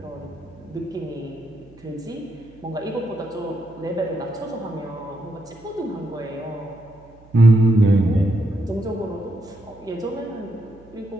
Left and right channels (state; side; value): noise; right; hum, 25 dB below the sound